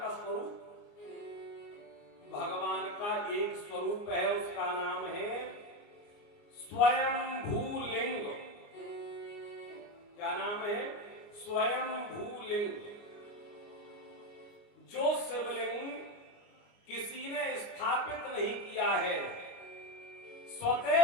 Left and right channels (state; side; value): late; right; 29 ms